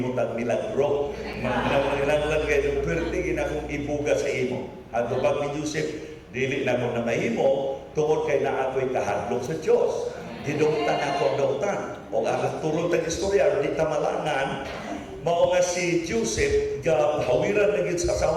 ang milagro? Manginanglan kayo, pwede ginakong ibuga sa imo. At pag ni Joseph, dili na mo na mahimo, tungod kay na ako'y kahadlok sa Diyos. Didungtan ako ang dautan. O alas turong tang istorya, di tamalangan, mao nga si Joseph, hawiran na sa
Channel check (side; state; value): both; identical; correlation 1.00